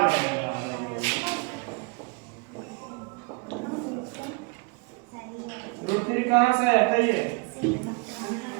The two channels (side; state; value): left; quieter; 30.1 dB